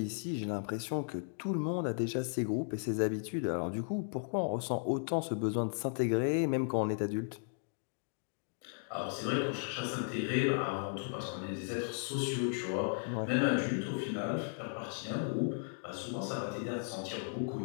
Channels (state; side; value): silent; right; digital silence